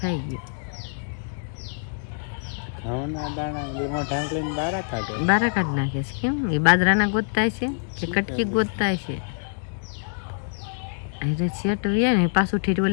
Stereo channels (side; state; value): right; silent; digital silence